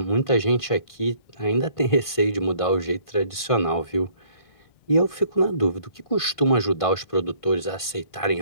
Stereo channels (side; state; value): right; late; 1.5 ms